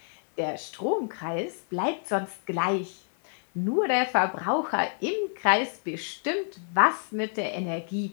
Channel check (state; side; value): silent; right; 59 dB below the other